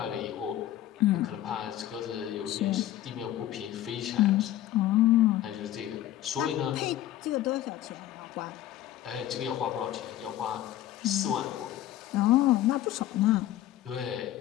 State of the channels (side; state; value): right; quieter; 13.2 dB